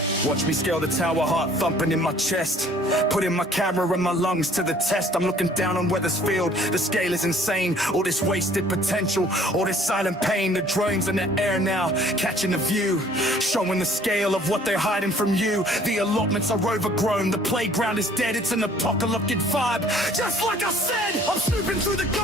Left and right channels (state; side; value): normal; both; correlation 0.56